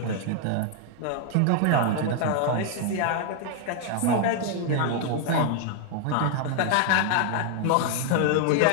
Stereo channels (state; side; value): different; both; correlation 0.00